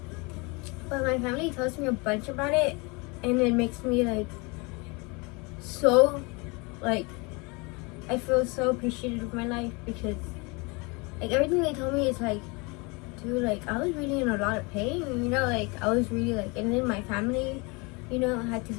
But my family tells me a bunch about it and it makes me I feel so appreciative of my life because everything they told me is dude, I was really in a lot of pain, I was really and then my family, had to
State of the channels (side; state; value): right; quieter; 28.5 dB